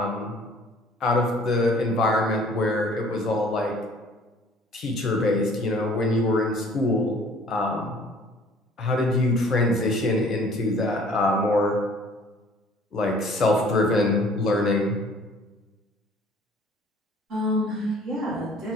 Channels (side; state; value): both; normal; correlation 0.54